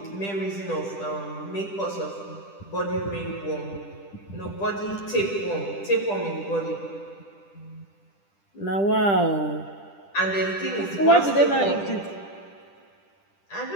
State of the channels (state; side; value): late; right; 10 ms